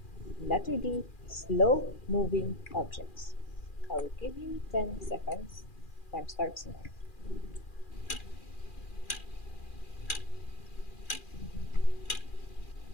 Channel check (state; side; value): late; right; 2.4 ms